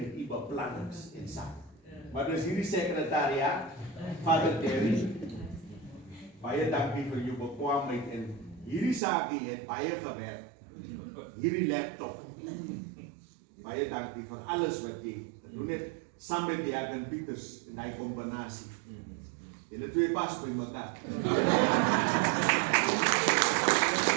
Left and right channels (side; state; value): left; drops out; at 9.0 s